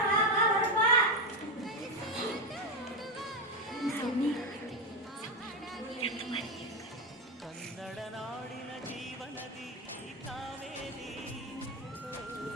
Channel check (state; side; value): normal; both; correlation 0.10